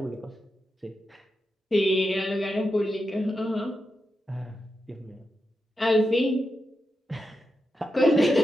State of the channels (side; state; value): both; normal; correlation 0.88